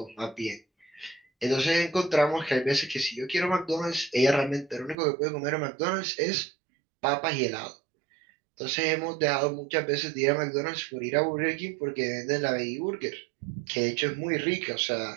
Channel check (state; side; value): drops out; left; at 5.0 s